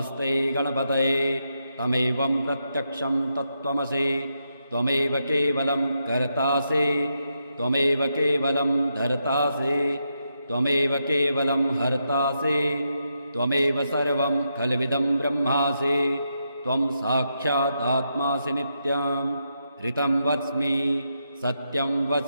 गणपतये तमेवं प्रत्यक्षं तत्त्वमसि त्वमेव केवलं कर्तासि त्वमेव केवलं धर्तासि त्वमेव केवलं हर्तासि त्वमेव सर्वं खल्विदं ब्रह्मासि त्वं साक्षादात्मासि नित्यं ऋतं वच्मि सत्यं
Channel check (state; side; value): inverted; both; correlation -0.82